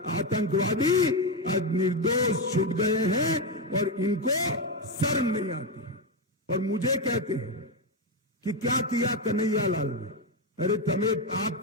आतंकवादी आज निर्दोष छूट गए हैं और इनको शर्म नहीं आती है। और मुझे कहते हैं कि क्या किया कन्हैया लाल ने? अरे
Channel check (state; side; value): normal; both; correlation 0.09